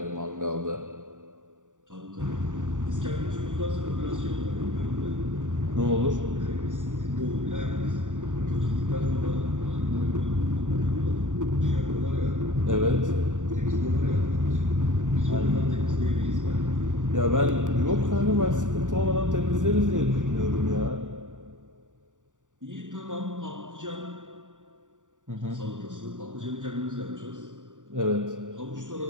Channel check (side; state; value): left; late; 0.87 ms